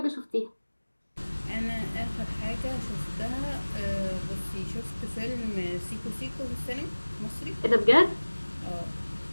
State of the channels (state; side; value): inverted; both; correlation -1.00